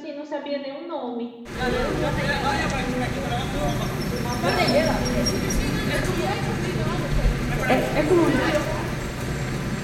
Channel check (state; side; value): identical; both; correlation 1.00